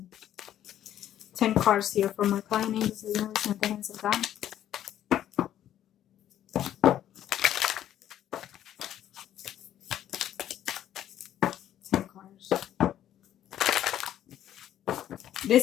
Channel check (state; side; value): quieter; right; 11.4 dB